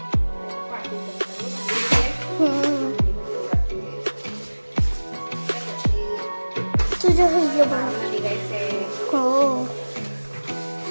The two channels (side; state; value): both; inverted; correlation -1.00